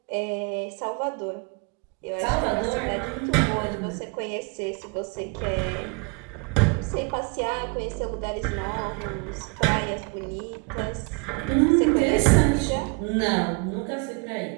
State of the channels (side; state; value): left; quieter; 32.0 dB